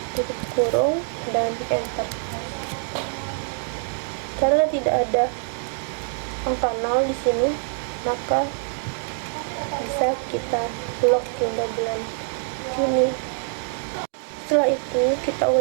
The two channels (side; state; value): left; silent; 62 dB below the other